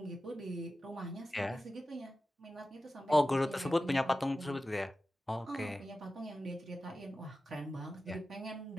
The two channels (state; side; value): normal; both; correlation 0.94